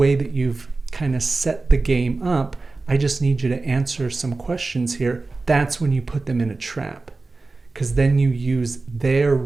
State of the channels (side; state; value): left; quieter; 3.6 dB